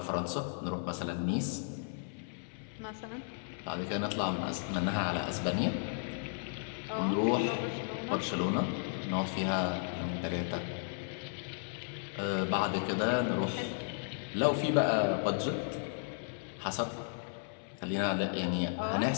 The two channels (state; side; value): silent; right; 55 dB below the other